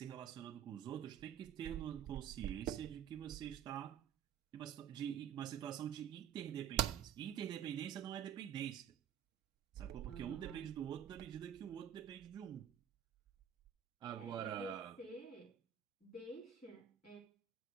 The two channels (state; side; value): quieter; left; 9.5 dB